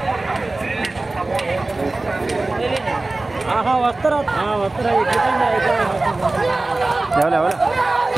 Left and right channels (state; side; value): quieter; left; 3.1 dB